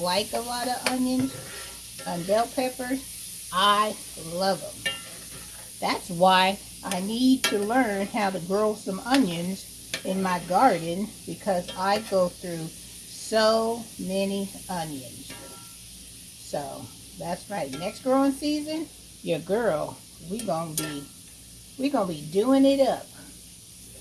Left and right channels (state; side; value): identical; both; correlation 1.00